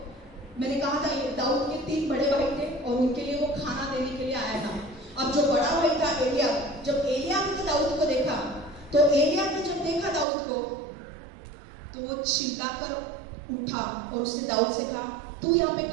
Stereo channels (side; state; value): left; drops out; at 10.2 s